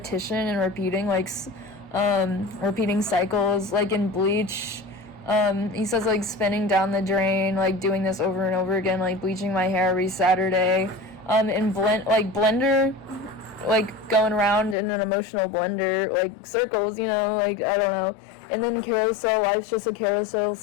and repeating, like, repeating cycles. Like in Bleach, he says, like, spinning down the drain, like, doing this over and over again, like, bleaching my hair every Saturday. In Blender, like, going around in an emotional blender, like, circles, you know, like, I don't know. And then Carousel, life's just a carousel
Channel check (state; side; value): drops out; right; at 14.8 s